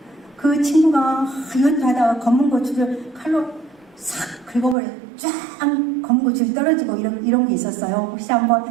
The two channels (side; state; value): left; drops out; at 4.8 s